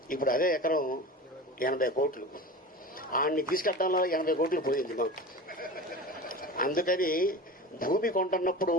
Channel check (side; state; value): both; normal; correlation 0.32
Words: ఇప్పుడు అదే ఎకరం 80 కోట్లు. ఆడిని తీసుకెళ్ళడంలో 80 కోట్లు పోయింది మాకు. అందుకని భూమి కొంటున్నప్పుడు